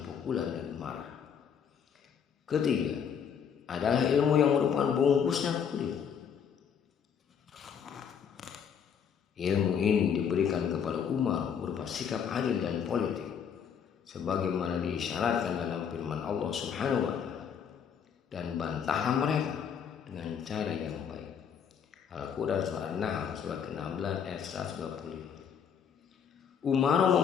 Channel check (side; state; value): right; quieter; 7.5 dB